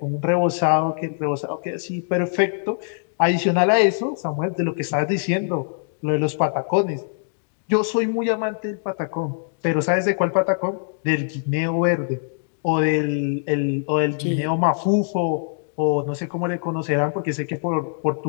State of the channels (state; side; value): silent; right; digital silence